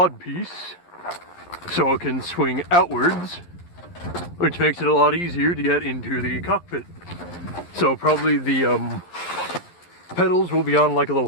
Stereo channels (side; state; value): right; late; 11 ms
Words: piece so it can swing outwards, which makes it a lot easier to get into the cockpit. So probably the pedals will be on like a